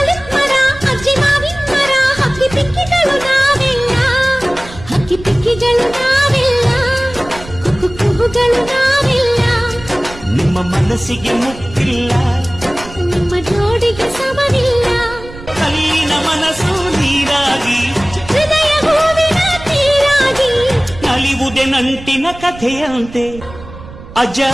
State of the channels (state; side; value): noise; right; rumble, 16 dB below the sound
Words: ಮರ ಅಜ್ಜಿ ಮಾವಿನ ಮರ ಹಕ್ಕಿ ಪಿಕ್ಕಿಗಳು ನಾವೆಲ್ಲ, ಹಕ್ಕಿ ಪಿಕ್ಕಿಗಳು ನಾವೆಲ್ಲ, ಕುಕ್ಕು ಕುಕ್ಕುಗಳು ನಾವೆಲ್ಲ. ನಿಮ್ಮ ಮನಸ್ಸಿಗೆ ಮುಟ್ಟಿಲ್ಲ, ನಿಮ್ಮ ಜೋಡಿಗೆ ಸಮವಿಲ್ಲ. ಕಲ್ಲಿನ ಮನಸ್ಸು ನೀರಾಗಿ, ಹೃದಯ ಹೂವಿನ ತೀರಾಗಿ, ನಲಿವುದೆ ನಂಟಿನ ಕಥೆಯಂತೆ.